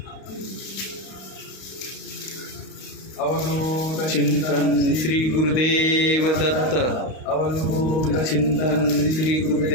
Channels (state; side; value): late; right; 32 ms